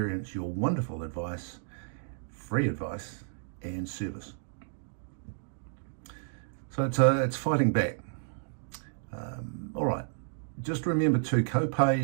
your wonderful advice, free advice, and service. So it's fighting back. All right. Just remember too,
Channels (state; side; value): silent; left; digital silence